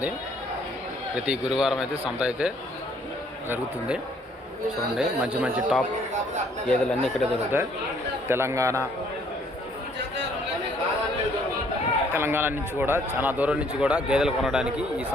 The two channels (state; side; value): normal; both; correlation 0.63